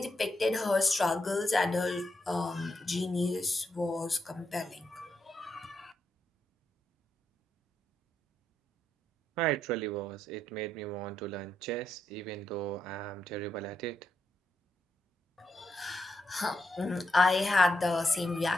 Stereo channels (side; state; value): both; normal; correlation 0.82